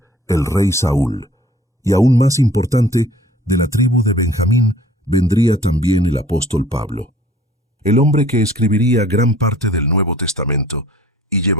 el rey Saúl. Y aún más importante, de la tribu de Benjamín vendría también el apóstol Pablo, el hombre que escribiría gran parte del Nuevo Testamento y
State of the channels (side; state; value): both; normal; correlation 0.52